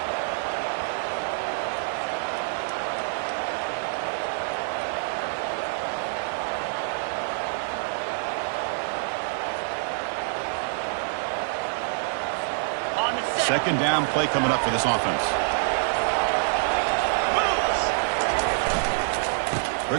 Second down play coming up for this offense.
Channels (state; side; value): silent; left; 61 dB below the other